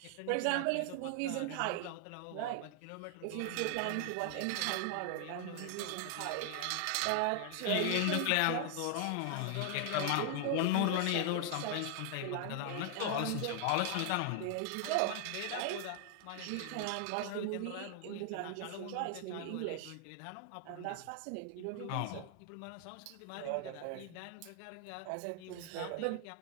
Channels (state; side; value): different; both; correlation 0.00